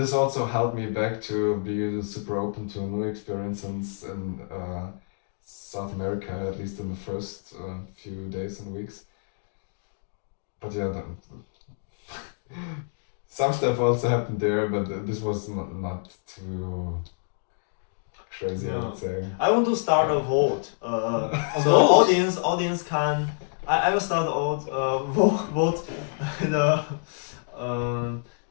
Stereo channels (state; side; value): silent; right; digital silence